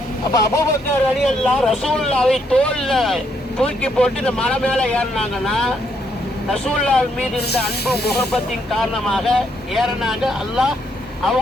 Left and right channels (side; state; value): both; normal; correlation 0.74